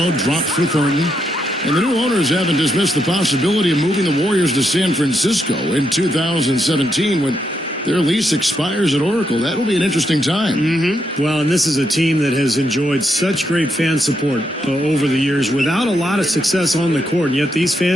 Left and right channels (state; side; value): normal; both; correlation 0.80